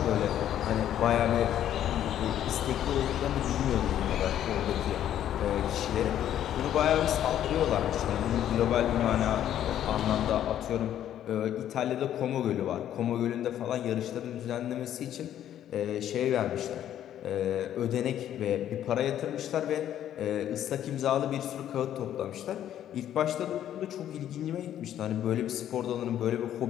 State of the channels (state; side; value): quieter; right; 11.0 dB